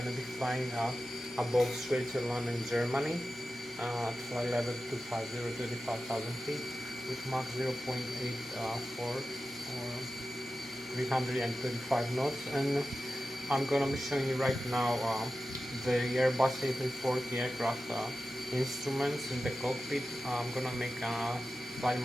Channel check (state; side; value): normal; both; correlation 0.93